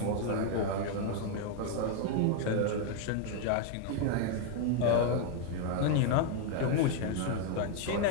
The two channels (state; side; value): different; both; correlation 0.00